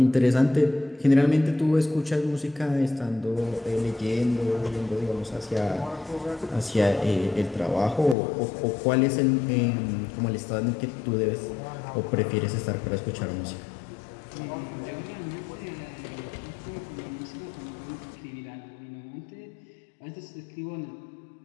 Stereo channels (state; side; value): drops out; right; at 8.2 s